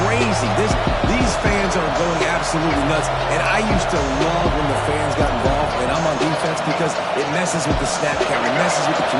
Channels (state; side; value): identical; both; correlation 1.00